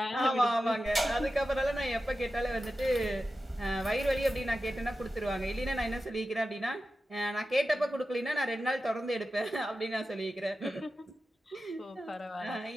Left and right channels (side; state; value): both; normal; correlation 0.92